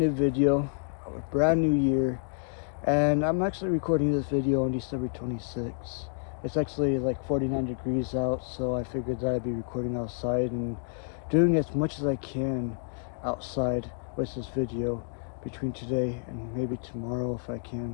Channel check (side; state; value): right; silent; digital silence